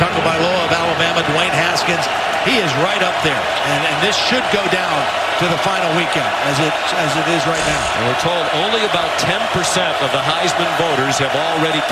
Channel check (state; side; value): identical; both; correlation 1.00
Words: of Alabama, Dwayne Haskins, he is right up there. And this should go down to the final weekend as it is right now. And we're told only about 10% of the Heisman voters have already